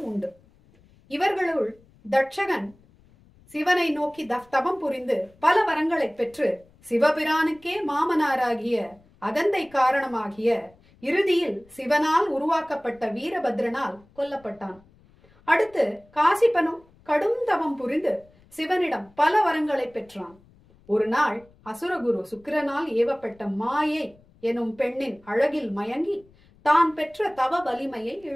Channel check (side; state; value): left; noise; rumble, 29 dB below the sound